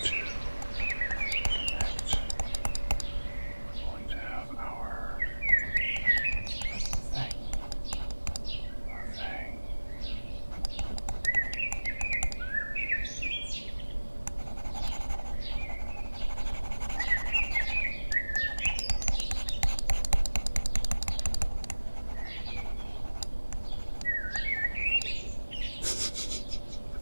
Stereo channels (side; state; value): both; inverted; correlation -1.00